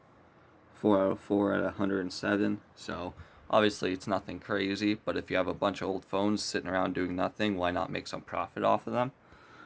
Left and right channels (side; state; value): both; identical; correlation 1.00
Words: 4 out of 4 at 107. So obviously it's nothing crazy, but if you have a bunch of old phones sitting around doing nothing, why not make some profit off of them?